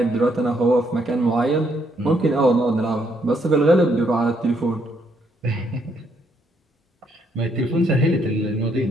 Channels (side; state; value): both; normal; correlation 0.73